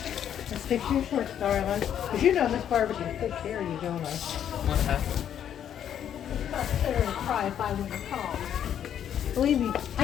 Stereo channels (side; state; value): right; quieter; 9.6 dB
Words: Let's fix your shorts, darling. Cause you know Miss Barbara can take care of you, don't I? What happened? I'll sit there and cry if I were to call. Believe me, I